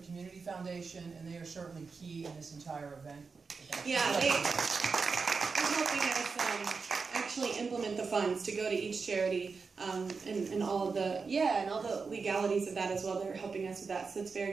Community Foundation, and they are certainly key in this entire event. Yeah, they're helping us actually implement the funds to go to each charity, and all of the, and all the legalities of that as well. They're helping us with that, so it's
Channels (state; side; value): quieter; left; 4.9 dB